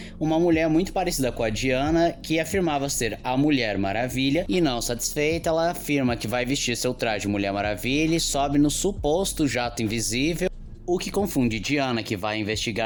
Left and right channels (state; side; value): identical; both; correlation 1.00